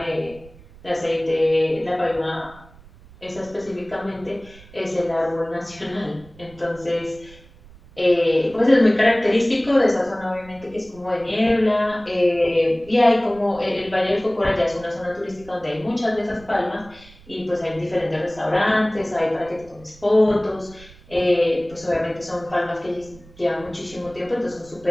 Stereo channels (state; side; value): noise; right; rumble, 23 dB below the sound